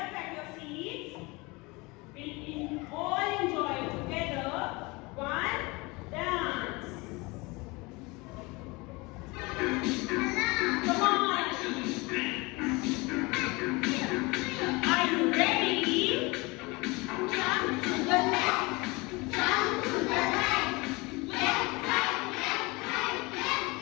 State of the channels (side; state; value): right; quieter; 25.0 dB